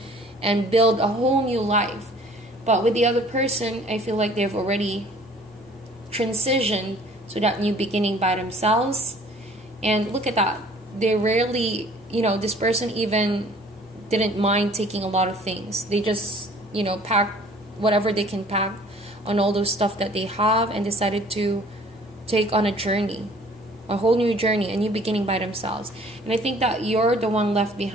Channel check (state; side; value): normal; both; correlation 0.53